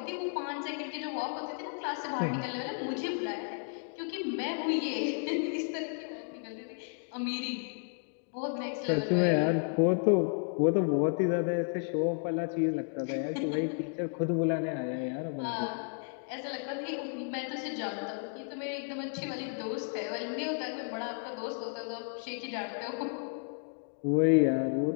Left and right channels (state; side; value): silent; right; 56 dB below the other